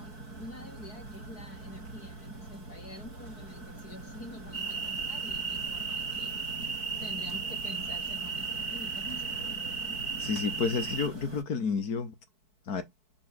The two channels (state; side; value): late; right; 4.6 ms